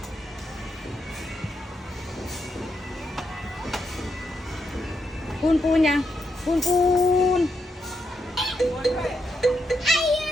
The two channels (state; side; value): normal; both; correlation 0.81